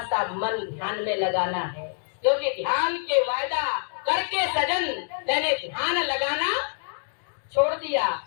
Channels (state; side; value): silent; right; 61 dB below the other